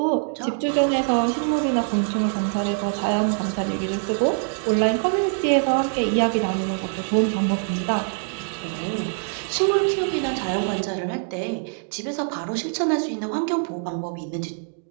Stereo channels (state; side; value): silent; left; 63 dB below the other